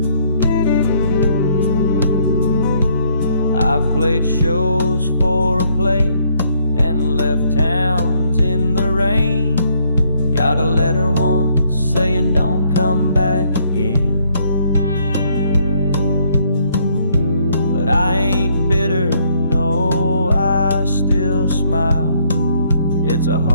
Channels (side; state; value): both; inverted; correlation -0.68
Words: I've played shows for a plate and left towns in the rain. Got a letter once saying don't come back again. But I ain't bitter, no, I still smile. It's a